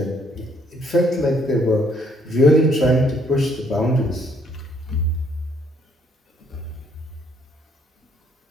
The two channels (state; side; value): normal; both; correlation 0.67